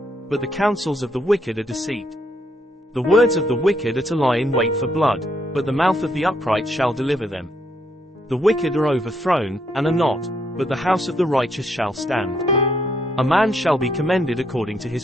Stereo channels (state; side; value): normal; both; correlation 0.74